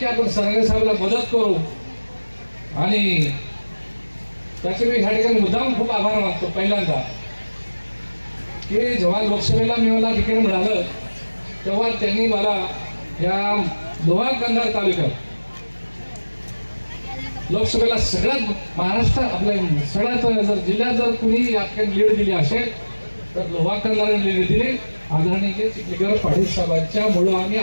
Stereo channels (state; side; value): inverted; both; correlation -1.00